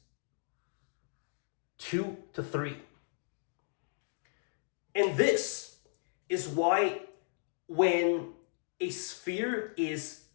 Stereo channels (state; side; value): silent; right; digital silence